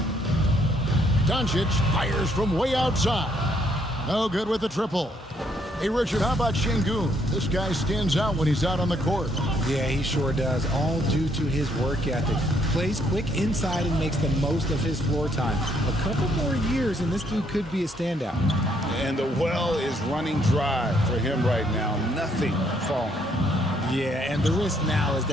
Doncic fires from way outside. No good with the triple. Hey, Richard, how about Şengün? This guy stands out when he's out on the court. Yeah, he sure does, all due to his work ethic. Plays quick inside and makes the most of his floor time. A couple more years and this dude could be a standout. And the well is running dry for him right now. Nothing falling. Yeah, and the risk now is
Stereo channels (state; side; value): normal; both; correlation 0.70